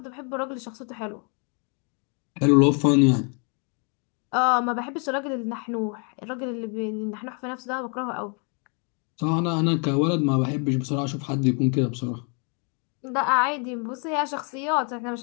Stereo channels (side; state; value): right; quieter; 37.6 dB